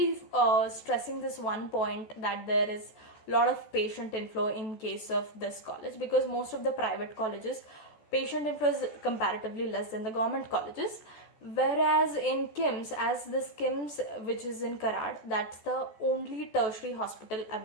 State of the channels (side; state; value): right; late; 14 ms